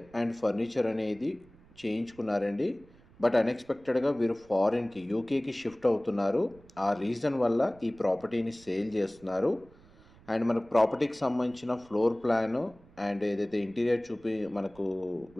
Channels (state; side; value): noise; right; rumble, 26 dB below the sound